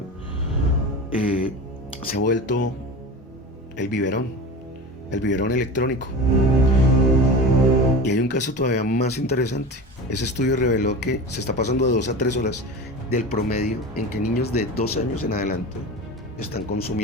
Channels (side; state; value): both; normal; correlation 0.30